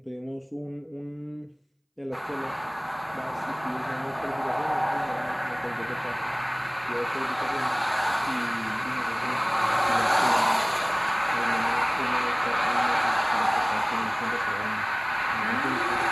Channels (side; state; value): both; identical; correlation 1.00